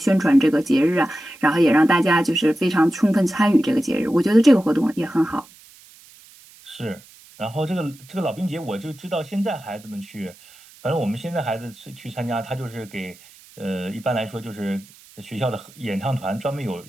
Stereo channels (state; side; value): noise; right; hiss, 24 dB below the sound